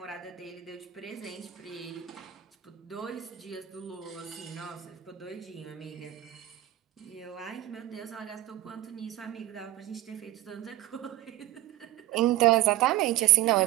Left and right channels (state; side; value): quieter; left; 14.4 dB